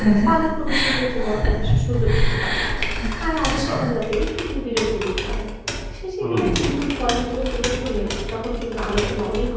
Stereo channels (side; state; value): both; identical; correlation 1.00